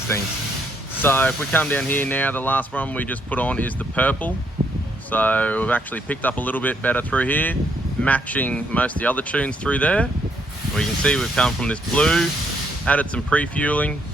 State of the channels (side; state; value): both; normal; correlation 0.72